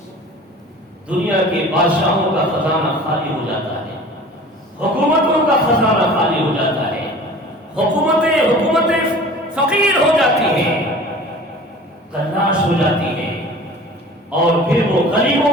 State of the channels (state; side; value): normal; both; correlation 0.43